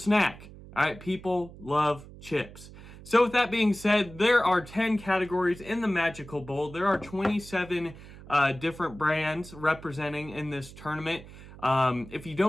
All right, people love chips. So with that being said, there are 10 categories in the Magical Bowl. There are 27 different brands representing in this tournament. If you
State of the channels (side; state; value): right; noise; hum, 17 dB below the sound